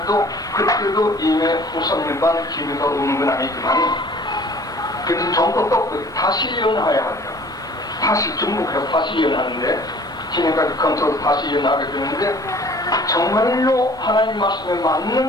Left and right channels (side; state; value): both; normal; correlation 0.51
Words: 그때도 이미 후 3년 반 기회가 오는 건 아니지만 그래도 정도 떴고 다시 예언해야 하죠. 다시 중복해서 다시 예언하는데 지금까지 컨트롤 다시 예언하게 되는데 정말로 하나님 말씀에